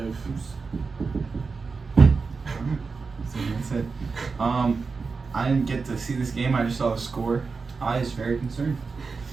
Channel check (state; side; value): quieter; left; 4.6 dB